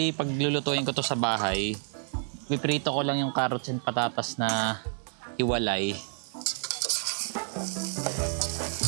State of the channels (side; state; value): left; silent; 58 dB below the other